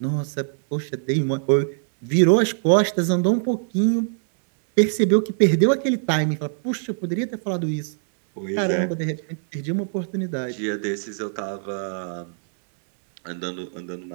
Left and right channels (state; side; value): silent; left; digital silence